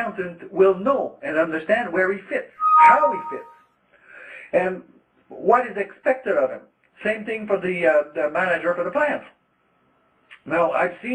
will know and understand where he fits, how he fits, and what is expected of him. Same thing for the manager for the plant. Now, I've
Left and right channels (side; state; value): both; identical; correlation 1.00